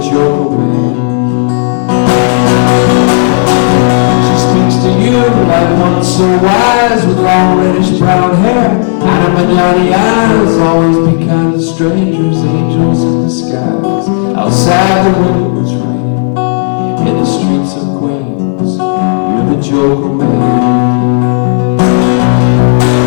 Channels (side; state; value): right; silent; digital silence